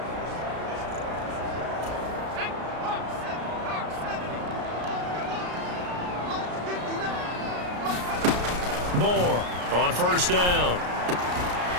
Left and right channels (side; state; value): left; late; 34 ms